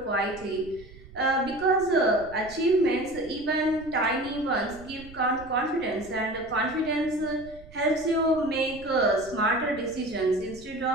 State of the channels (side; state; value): right; noise; rumble, 19 dB below the sound